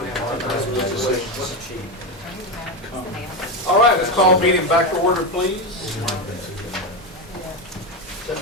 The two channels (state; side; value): normal; both; correlation 0.13